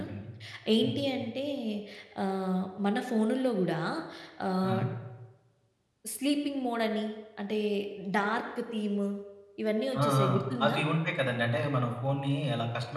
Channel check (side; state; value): both; identical; correlation 1.00